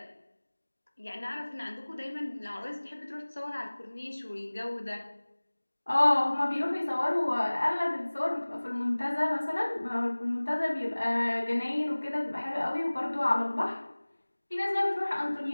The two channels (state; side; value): inverted; both; correlation -1.00